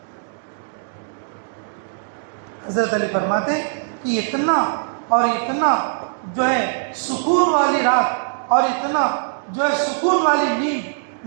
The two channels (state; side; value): silent; left; digital silence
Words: حضرت علی فرماتے کہ اتنا اور اتنا جو ہے سکون والی رات اور اتنا جو ہے سکون والی نیند